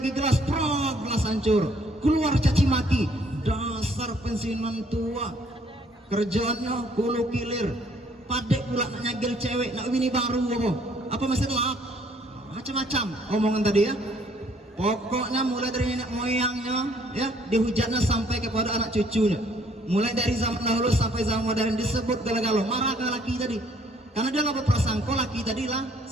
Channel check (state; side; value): normal; both; correlation 0.63